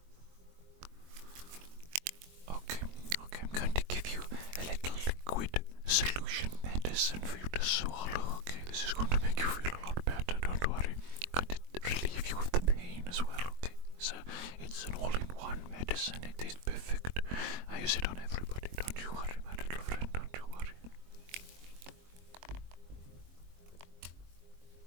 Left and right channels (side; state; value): left; late; 22 ms